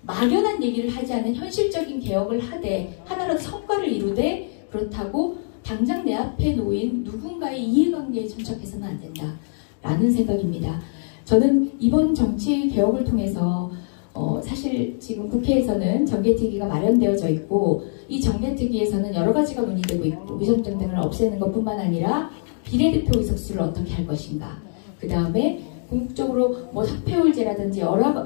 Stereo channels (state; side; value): silent; right; digital silence